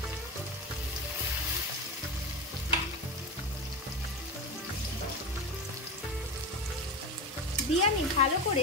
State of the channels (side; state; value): both; normal; correlation 0.22